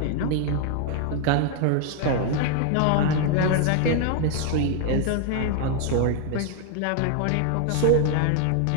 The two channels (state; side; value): different; both; correlation 0.00